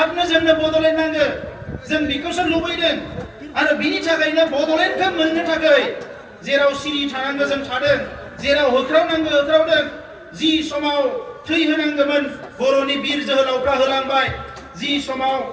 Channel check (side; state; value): both; identical; correlation 1.00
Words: जोंनो बड'लेण्ड नांगौ। जों बेखौसो लुबैदों आरो बिनि थाखायनो बड'लेण्डखौ मोननो थाखाय जेराव सिरि थानांगौ जों थादों, जेराव होख्रावनांगौ होख्रावदों। जि समाव थै होनांगौमोन बर'नि बिर जोहोलावफ्रा होलांबाय, जि समाव